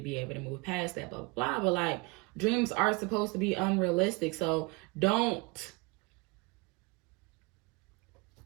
be able to move past that, blah, blah, blah. But like, dreams are supposed to be unrealistic. So don't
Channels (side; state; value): left; quieter; 26.7 dB